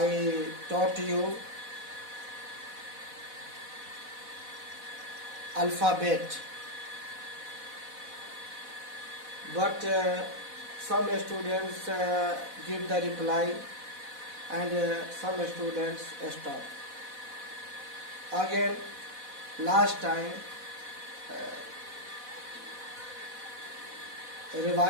taught you alphabet, but some students give the reply and some students stop. Again, last time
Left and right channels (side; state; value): left; late; 4.1 ms